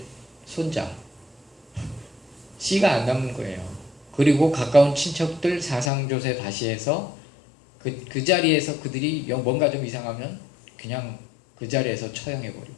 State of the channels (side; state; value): right; drops out; at 5.9 s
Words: 손자. 씨가 안 남는 거예요. 그리고 가까운 친척들 사상조세 다시 해서 그 자리에서 그들이 뭔가 좀 이상하면 그냥 그 자리에서